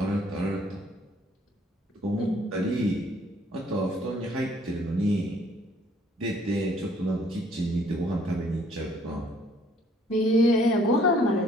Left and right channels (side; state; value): both; normal; correlation 0.61